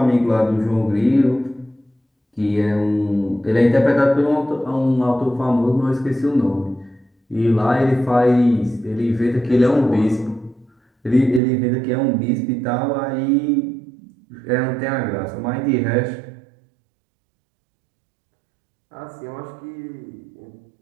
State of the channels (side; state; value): left; drops out; at 11.4 s